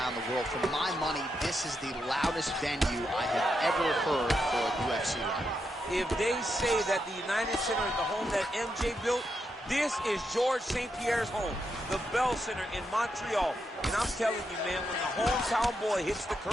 the world, for my money, this is the loudest venue I have ever heard for a UFC run. If they say that the United Center is the home that MJ built, this is George St. Pierre's home, the Bell Center in Montreal. And I'm telling you, man, when the hometown boy hits the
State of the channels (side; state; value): both; normal; correlation 0.83